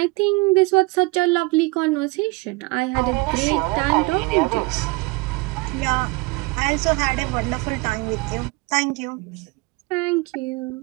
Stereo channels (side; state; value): left; quieter; 24.6 dB